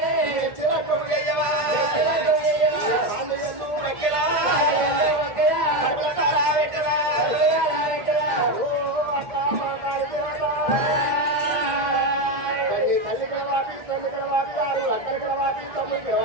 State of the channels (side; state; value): left; late; 1.6 ms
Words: చిరకయ్యవా మక్కెలా తారా పెట్టరా తల్లి కలవాపి తండ్రి కలవాపి ఆరు అక్కడి కలవాపి తమ్ముడి